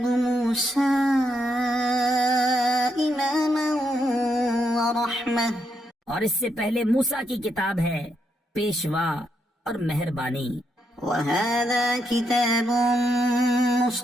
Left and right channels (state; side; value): normal; both; correlation 0.79